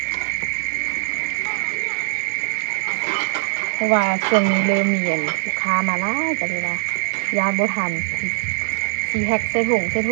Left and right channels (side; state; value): left; silent; 58 dB below the other